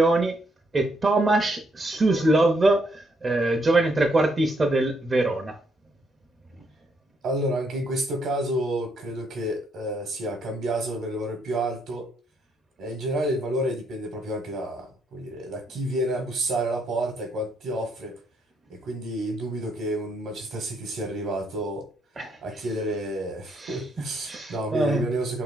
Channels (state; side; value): normal; both; correlation 0.74